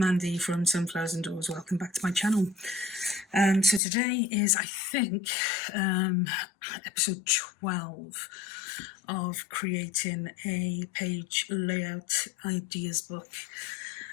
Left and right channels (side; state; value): right; drops out; at 3.8 s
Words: from Sunflowers and Doors. Welcome back to my channel. So today is, I think, episode 12 of creating a page layout ideas book.